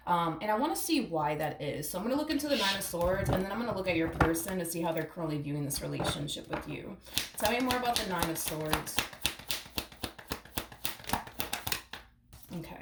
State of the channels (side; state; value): both; identical; correlation 1.00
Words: and I want to see why that is. So I'm going to look into the Nine of Swords, and then I'm going to look at your person to see how they're currently viewing this relationship with you. Tell me more about the Nine of Swords.